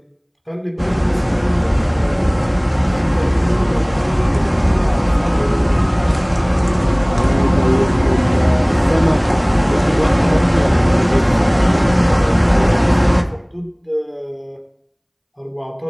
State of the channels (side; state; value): both; identical; correlation 1.00